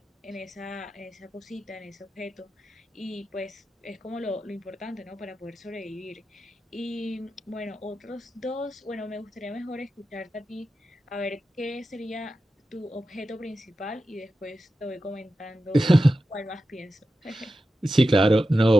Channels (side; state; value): both; normal; correlation 0.91